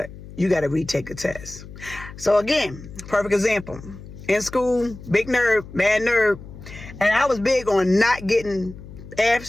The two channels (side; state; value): left; noise; hum, 15 dB below the sound